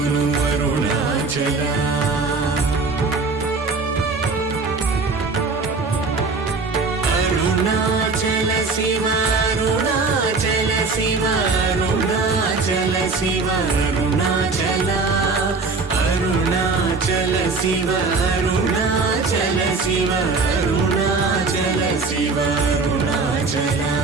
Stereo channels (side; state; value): left; quieter; 4.1 dB